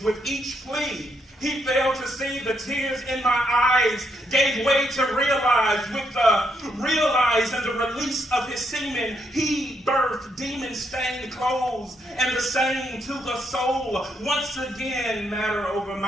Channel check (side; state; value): both; normal; correlation 0.77